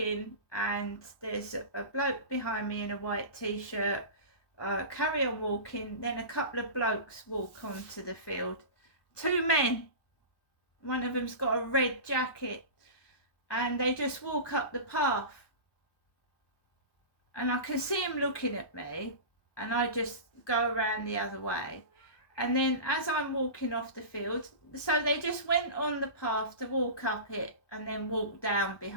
and there's a bloke behind me in a white t-shirt. Carry on walking, then a couple of blokes walk onto the field. 2 men. One of them's got a red jacket and they just walk up the path. And I can see him looking at me. And I just go around the other way. And then as I'm walking off the field, so they just went on the path to walk up it and then walk down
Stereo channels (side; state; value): right; late; 1.2 ms